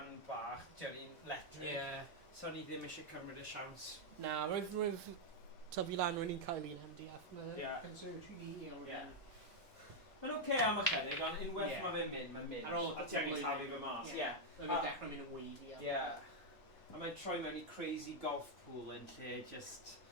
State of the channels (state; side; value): normal; both; correlation -0.01